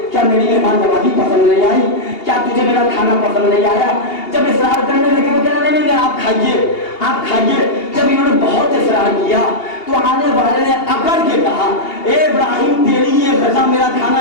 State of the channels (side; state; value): right; late; 2.8 ms